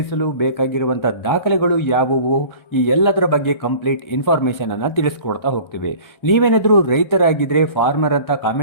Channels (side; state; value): right; late; 1.3 ms